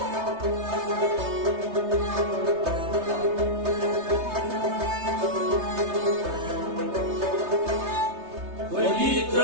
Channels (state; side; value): late; left; 3.3 ms